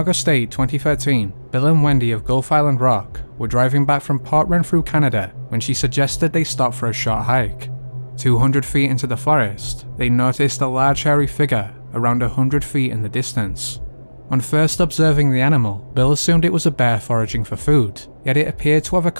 8, 2013, Bill and Wendy of Gulf Island Rock were driving back from Port Renfrew, Canada, when she suggested they stop for a short hike. 200 feet into the forest, they noticed a large hairy figure around 100 feet in the distance. On first observing the animal, Bill assumed it was a bear foraging for food, yet it appeared to have a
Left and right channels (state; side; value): inverted; both; correlation -1.00